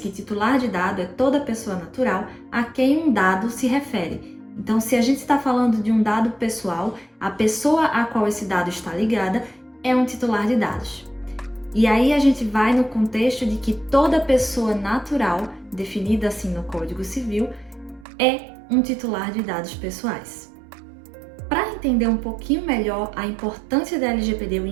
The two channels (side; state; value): left; drops out; at 18.1 s